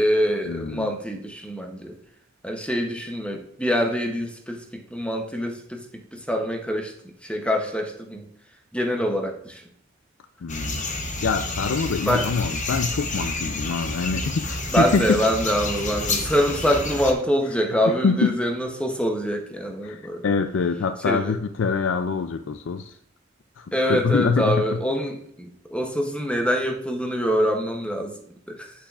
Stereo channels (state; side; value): normal; both; correlation 0.60